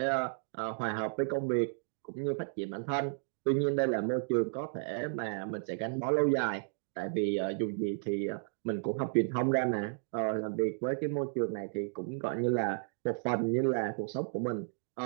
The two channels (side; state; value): left; silent; digital silence